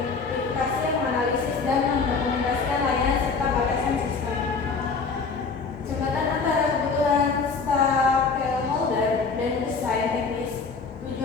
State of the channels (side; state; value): right; quieter; 4.7 dB